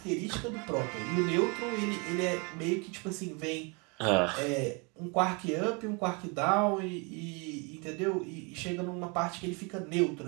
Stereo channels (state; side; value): quieter; left; 31.7 dB